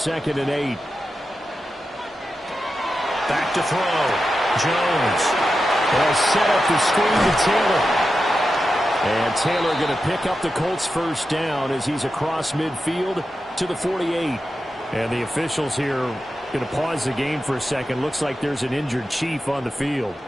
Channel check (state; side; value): normal; both; correlation 0.90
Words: and 8. Back to throw. Jones. They'll set up the screen to Taylor. And Taylor going to pick up the Colts' first down as he's across midfield to the 48. And the officials here going to pause the game for a second. Looks like there's an injured Chief on the field.